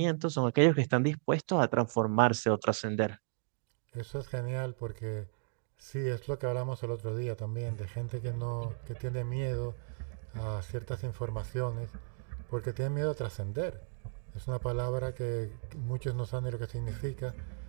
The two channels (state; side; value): silent; left; digital silence